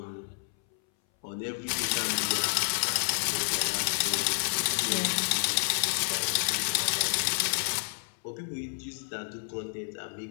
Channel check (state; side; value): silent; right; 58 dB below the other